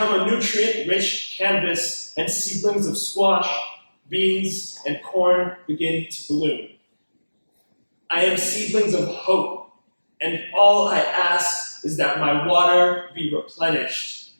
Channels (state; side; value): inverted; both; correlation -1.00